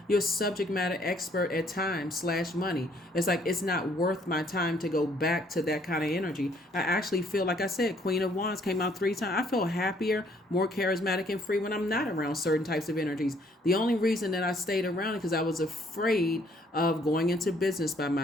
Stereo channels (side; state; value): both; normal; correlation 0.64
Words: your subject matter expert at times / money. It's like, it's not worth my time to go back to that kind of energy. I actually feel, like I said, Queen of Wands came out 3 times. I feel happier, more charismatic and free when I'm not around certain types of energies. The only reason that I stayed around is because I was afraid of going into business by